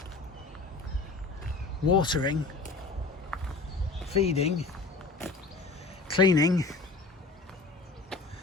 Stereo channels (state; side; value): quieter; right; 3.5 dB